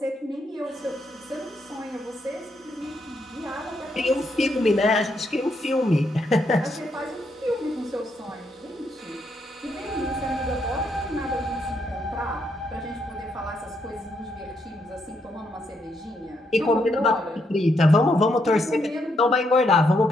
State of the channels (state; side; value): normal; both; correlation 0.77